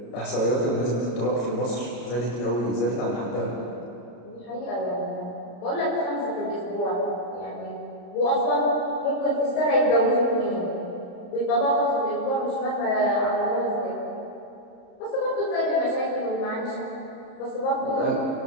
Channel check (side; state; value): right; late; 34 ms